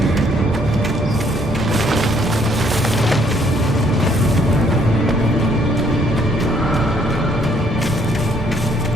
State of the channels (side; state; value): both; normal; correlation 0.66